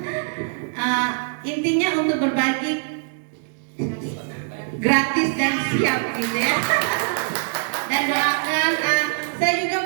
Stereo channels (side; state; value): left; silent; 64 dB below the other